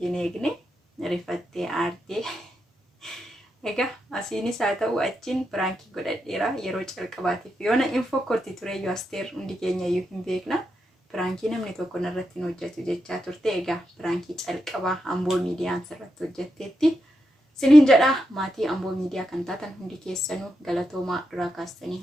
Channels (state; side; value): normal; both; correlation 0.85